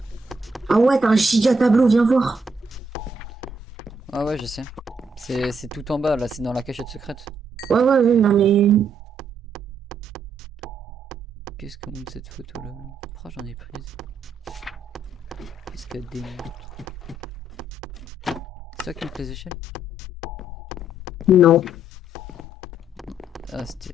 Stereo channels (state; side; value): normal; both; correlation 0.74